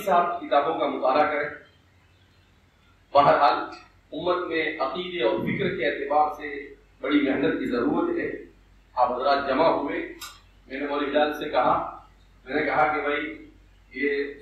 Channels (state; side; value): identical; both; correlation 1.00